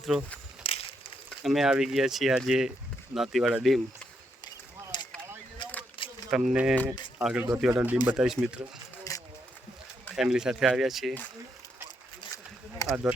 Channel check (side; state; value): both; normal; correlation 0.79